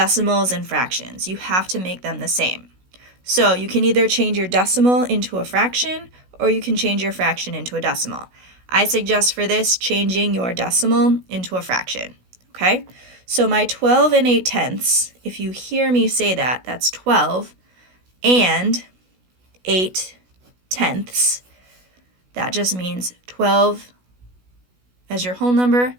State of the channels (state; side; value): late; left; 16 ms